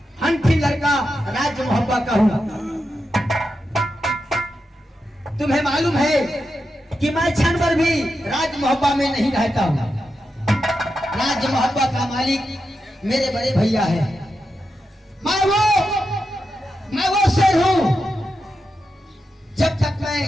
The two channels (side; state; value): both; normal; correlation 0.88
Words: हंठी लड़का राज मोहब्बा का हूं। तुम्हें मालूम है कि मैं क्षण भर भी राज मोहब्बा में नहीं रहता हूं। राज मोहब्बा का मालिक मेरे बड़े भैया है। मैं वो शेर हूं, जब तक मैं